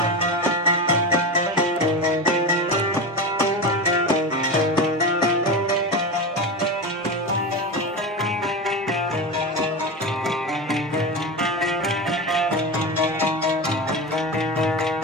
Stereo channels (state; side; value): normal; both; correlation 0.22